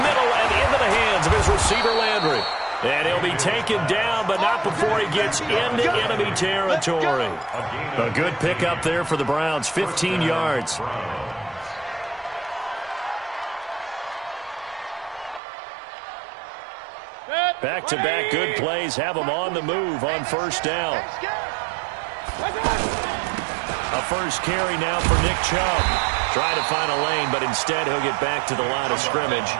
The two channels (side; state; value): left; drops out; at 15.4 s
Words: middle and into the hands of his receiver, Landry. And he'll be taken down, but not before he gets into enemy territory. A good pickup there for the Browns, 15 yards. Back-to-back good plays have them on the move on first down. A first carry now for Nick Chubb. Trying to find a lane, but instead he'll get back to the line of scrimmage.